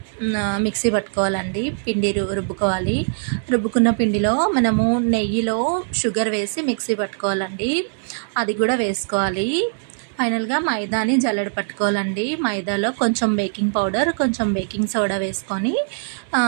మిక్సీ పట్టుకోవాలండి. పిండి రుబ్బుకోవాలి. రుబ్బుకున్న పిండిలో మనము నెయ్యిలో షుగర్ వేసి మిక్సీ పట్టుకోవాలండి. అది కూడా వేసుకోవాలి. ఫైనల్గా మైదాని జల్లెడ పట్టుకోవాలండి. మైదాలో కొంచెం బేకింగ్ పౌడర్, కొంచెం బేకింగ్ సోడా వేసుకొని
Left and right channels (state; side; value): silent; left; digital silence